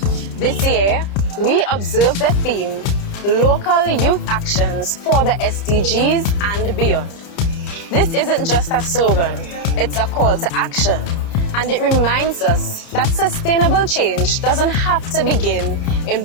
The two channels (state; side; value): late; right; 30 ms